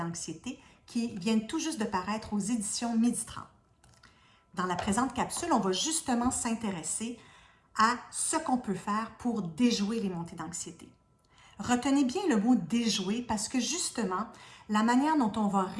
qui viennent tout juste de paraître aux éditions Midi 30. Dans la présente capsule, on va justement s'intéresser à ce qu'on peut faire pour déjouer les montées d'anxiété. Retenez bien le mot déjouer parce que justement, la manière dont on va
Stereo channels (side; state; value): both; identical; correlation 1.00